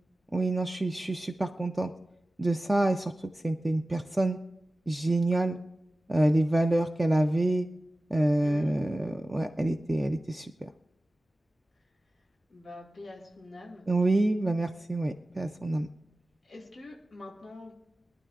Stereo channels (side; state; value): both; normal; correlation 0.96